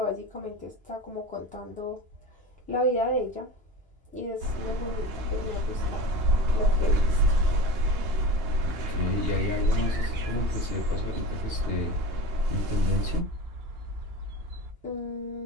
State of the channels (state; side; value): late; left; 2.9 ms